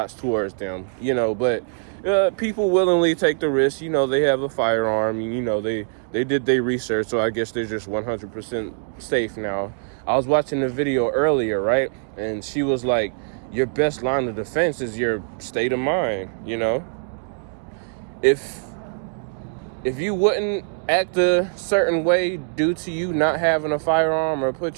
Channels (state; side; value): silent; left; digital silence